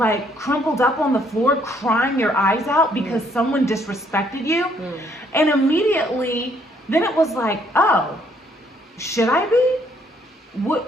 crumpled up on the floor, crying your eyes out because someone disrespected you? And immediately, then it was like, oh, should I be?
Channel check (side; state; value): both; normal; correlation 0.67